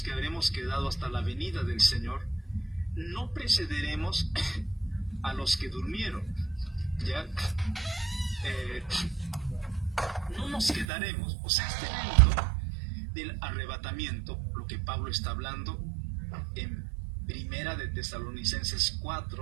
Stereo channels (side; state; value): left; drops out; at 10.9 s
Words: que habremos quedado hasta la venida del Señor, no precederemos a los que durmieron, ¿ya? No nos quedaremos. O sea, este evento del arrebatamiento, lo que Pablo está hablando en Primera de Tesalonicenses